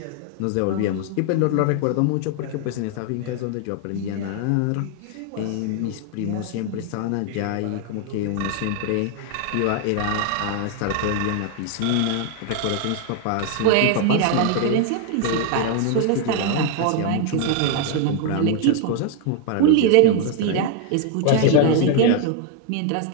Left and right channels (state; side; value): different; both; correlation 0.01